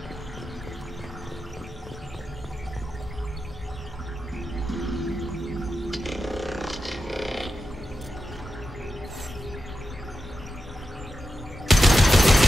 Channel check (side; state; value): both; normal; correlation 0.90